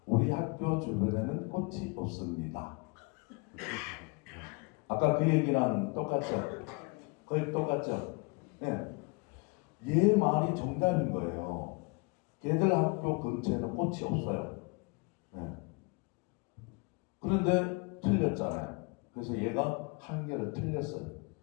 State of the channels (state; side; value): quieter; right; 30.5 dB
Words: 우리 학교 주변에는 꽃이 없습니다. 아까 그 얘기랑 똑같죠? 거의 똑같죠? 네. 얘 말이 정답인 거예요. 걔들 학교 근처에는 꽃이 없어요. 네. 그런데 틀렸잖아요. 그래서 얘가 한 개를 틀렸어요.